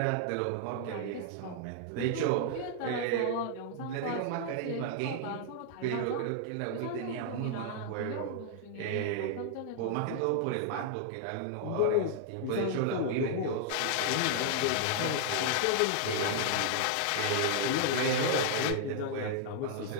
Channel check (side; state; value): both; different; correlation -0.01